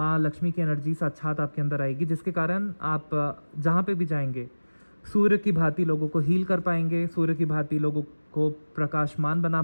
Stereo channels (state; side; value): inverted; both; correlation -1.00